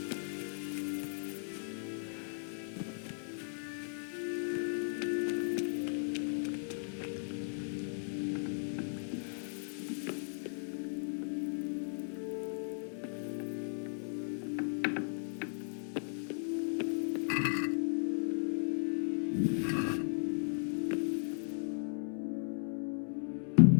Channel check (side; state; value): right; silent; 53 dB below the other